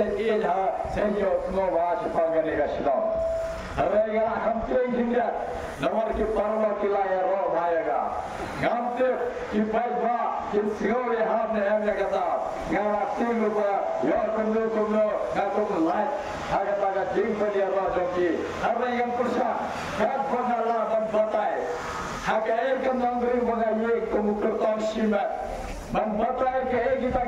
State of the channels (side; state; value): both; identical; correlation 1.00